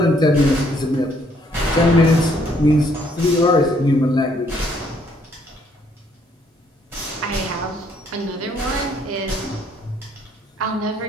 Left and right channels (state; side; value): normal; both; correlation 0.67